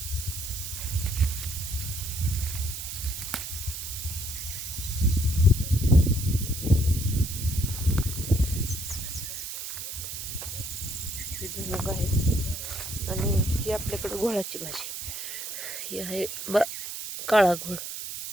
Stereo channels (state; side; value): noise; right; hiss, 7 dB below the sound